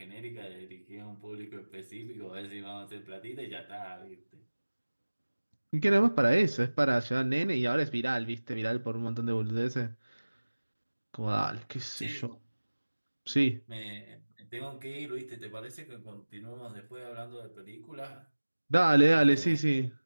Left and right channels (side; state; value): both; inverted; correlation -1.00